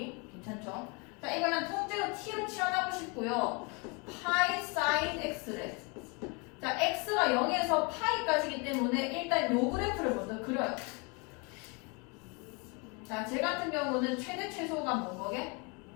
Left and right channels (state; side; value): quieter; right; 30.7 dB